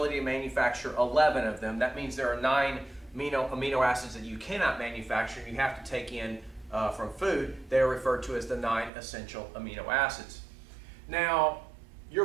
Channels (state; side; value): drops out; left; at 8.9 s